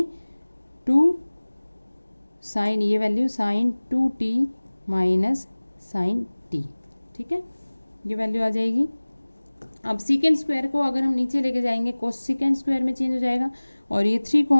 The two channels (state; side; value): inverted; both; correlation -1.00